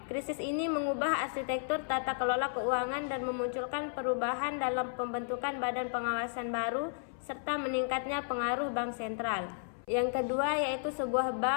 Krisis ini mengubah arsitektur tata kelola keuangan dan memunculkan perubahan dalam pembentukan badan pengawasan baru serta meningkatnya pengaruh bank sentral. Yang kedua yaitu sebuah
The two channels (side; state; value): right; silent; 55 dB below the other